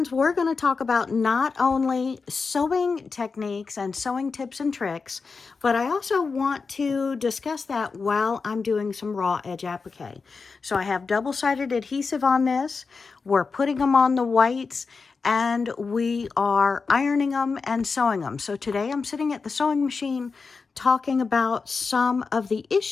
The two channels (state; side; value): quieter; right; 4.7 dB